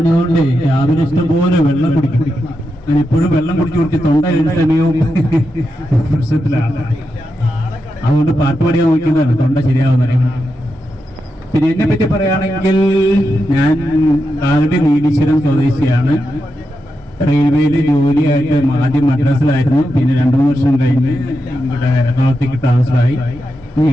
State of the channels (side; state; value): both; normal; correlation 0.87